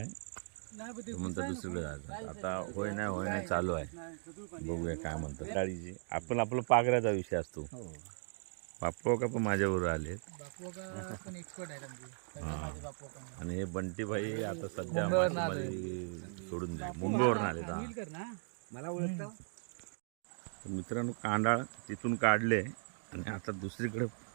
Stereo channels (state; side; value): silent; left; 53 dB below the other